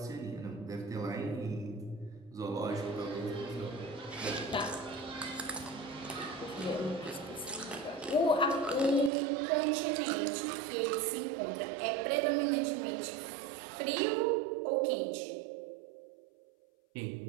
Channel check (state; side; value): drops out; left; at 9.1 s